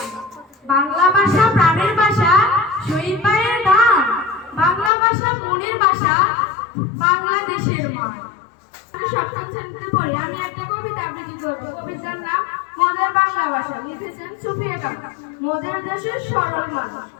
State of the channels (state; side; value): drops out; right; at 4.9 s